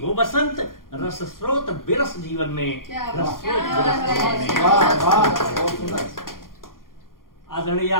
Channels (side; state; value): right; late; 0.91 ms